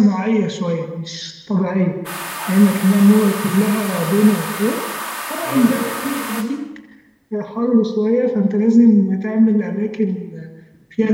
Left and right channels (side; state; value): both; identical; correlation 1.00